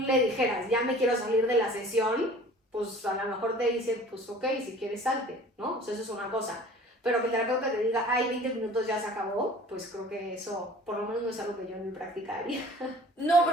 dijeras, ya me quiero salir de la sesión, pues a lo mejor te dice, pues ok, si quieres salte, ¿no? O sea, eso es una cosa. Pero que el terapeuta te diga, ay, 20 minutos ya se acabó, pues creo que eso, por lo menos no es algo que yo en mi práctica haría. No,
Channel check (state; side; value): normal; both; correlation 0.47